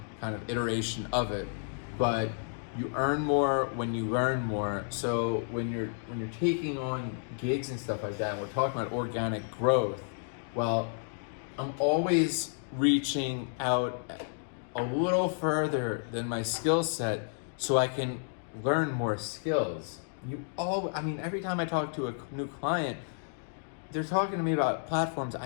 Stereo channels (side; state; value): right; silent; digital silence